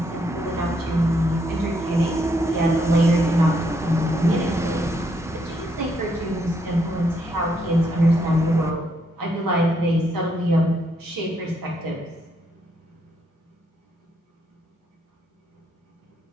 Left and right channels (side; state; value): both; normal; correlation 0.75